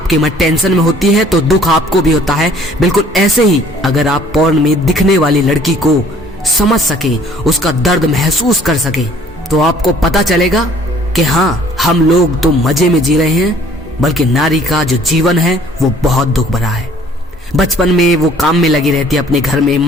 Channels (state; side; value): normal; both; correlation 0.56